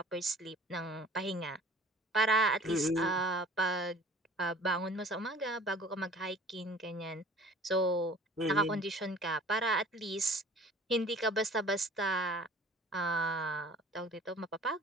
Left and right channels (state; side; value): normal; both; correlation 0.48